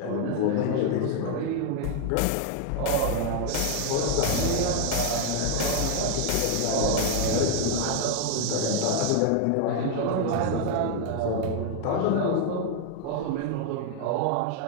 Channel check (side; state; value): both; different; correlation 0.00